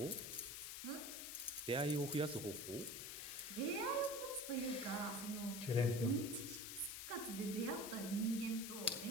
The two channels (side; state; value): left; noise; hiss, 6 dB below the sound